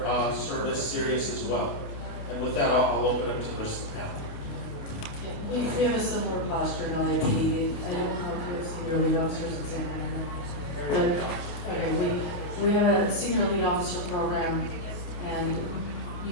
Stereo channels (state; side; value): late; right; 28 ms